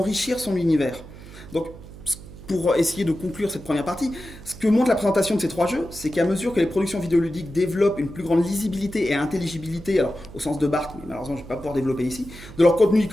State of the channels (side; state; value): right; noise; hum, 16 dB below the sound